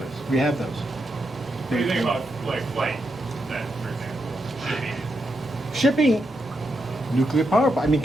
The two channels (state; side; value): normal; both; correlation 0.84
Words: We have those. What do you think about like flight, then, for example, Shipping, nuclear power. I mean,